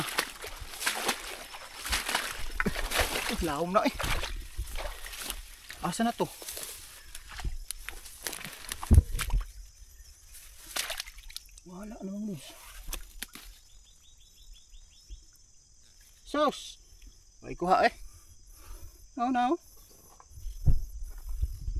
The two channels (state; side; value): identical; both; correlation 1.00